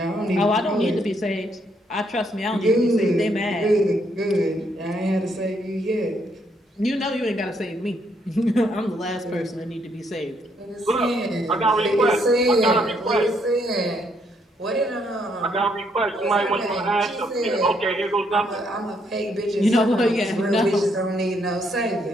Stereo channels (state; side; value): normal; both; correlation 0.73